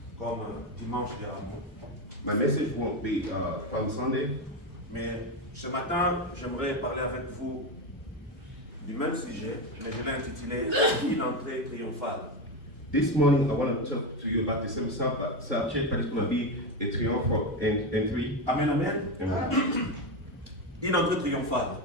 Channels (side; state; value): both; normal; correlation 0.13